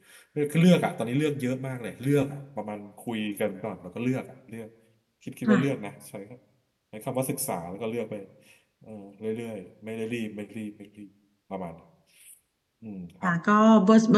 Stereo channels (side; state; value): both; identical; correlation 1.00